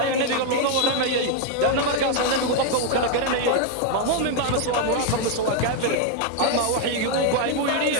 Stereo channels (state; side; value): different; both; correlation 0.01